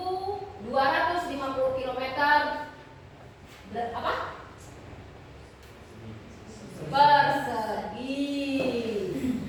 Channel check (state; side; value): identical; both; correlation 1.00